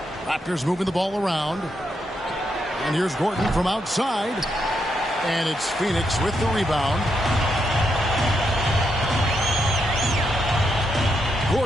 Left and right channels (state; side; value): normal; both; correlation 0.81